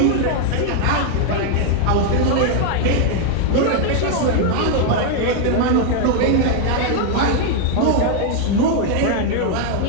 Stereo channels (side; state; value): both; different; correlation 0.00